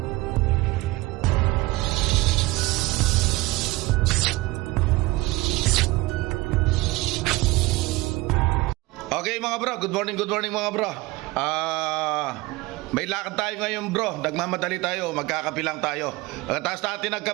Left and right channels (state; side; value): quieter; left; 20.9 dB